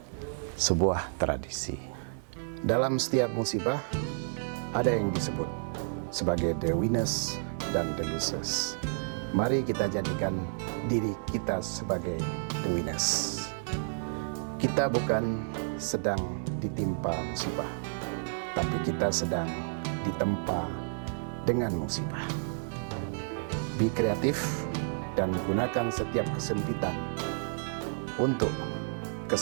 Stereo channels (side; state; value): left; silent; digital silence